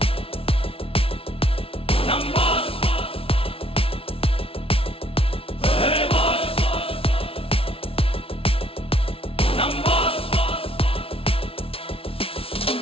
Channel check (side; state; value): right; late; 0.26 ms